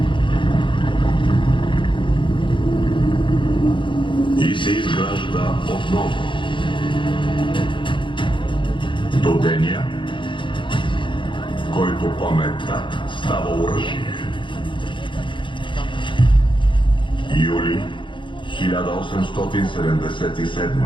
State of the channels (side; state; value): right; late; 0.24 ms